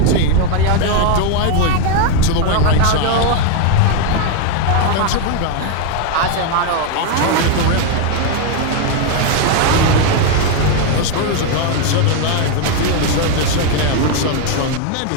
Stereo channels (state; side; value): different; both; correlation 0.01